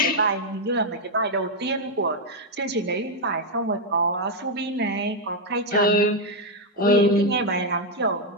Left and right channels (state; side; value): normal; both; correlation 0.01